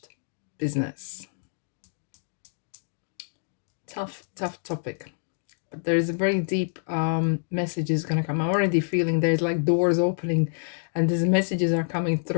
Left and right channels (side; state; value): right; silent; digital silence